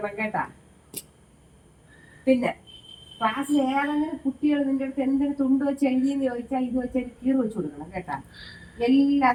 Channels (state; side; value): identical; both; correlation 1.00